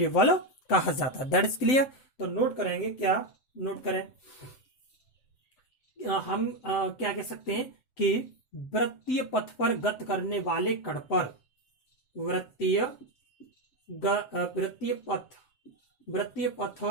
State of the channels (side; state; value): right; late; 7.8 ms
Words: बल कहा जाता है। That is clear. तो नोट करेंगे, क्या नोट करें, हम क्या कह सकते हैं कि वृत्तीय पथ पर गति करने वाले कण पर वृत्तीय पथ